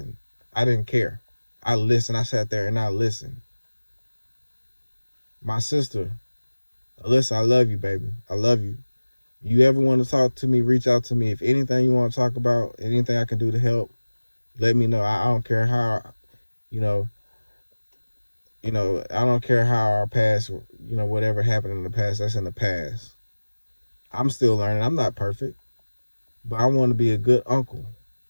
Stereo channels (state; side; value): inverted; both; correlation -1.00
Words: I didn't care. I listened. I sat there and I listened. My sister, Alyssa, I love you, baby. I love you. You ever want to talk to me, reach out to me. If anything you want to talk about, anything I can do to help, let me know. I don't care how, you know, I don't care how our past, whatever happened in the past, that's in the past. I'm still learning. I'm not perfect, but I want to be a good uncle.